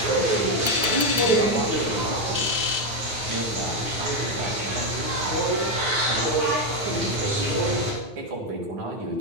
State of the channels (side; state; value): left; late; 9.0 ms